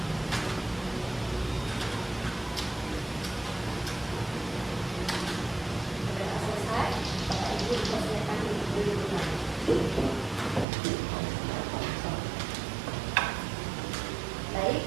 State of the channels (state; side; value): drops out; left; at 10.7 s